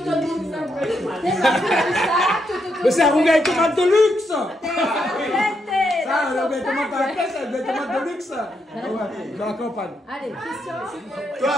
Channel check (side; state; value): both; normal; correlation 0.80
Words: Mais c'est un rougail tomate de luxe. Ça, le rougail tomate à la caisse, c'est un rougail tomate de luxe. Ouais, dans la campagne. Allez, Christian. Toi,